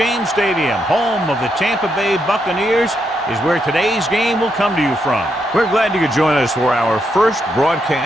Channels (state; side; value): normal; both; correlation 0.80